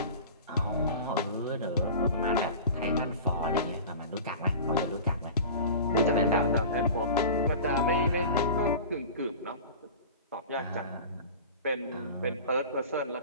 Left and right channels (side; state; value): both; inverted; correlation -0.36